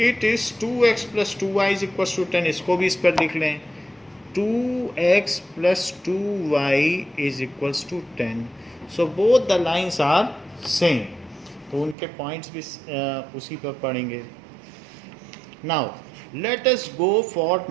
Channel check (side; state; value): left; drops out; at 12.0 s